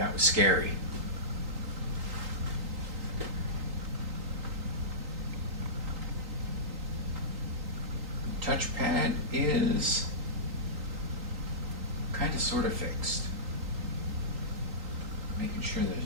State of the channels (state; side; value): late; left; 3.8 ms